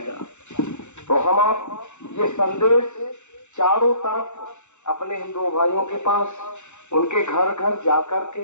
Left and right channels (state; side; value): late; right; 0.83 ms